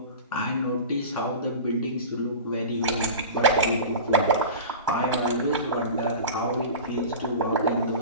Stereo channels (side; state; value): both; inverted; correlation -0.32